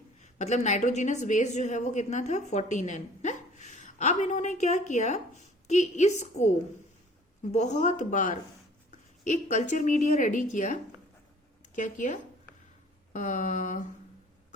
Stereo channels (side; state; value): both; normal; correlation 0.52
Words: मतलब नाइट्रोजिनस बेस जो है वो कितना था 14N है। अब इन्होंने क्या किया कि इसको बहुत बार एक कल्चर मीडिया रेडी किया। क्या किया,